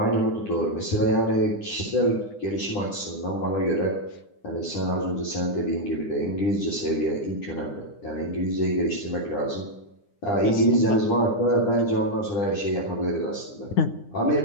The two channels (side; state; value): right; late; 9.8 ms